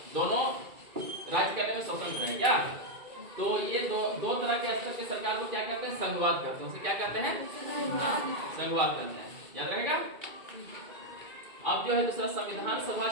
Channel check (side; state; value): left; late; 2.3 ms